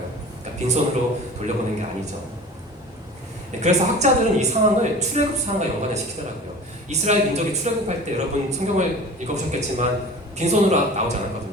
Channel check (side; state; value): both; normal; correlation 0.40